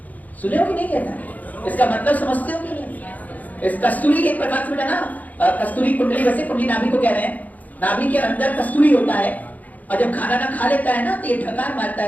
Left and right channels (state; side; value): late; right; 0.078 ms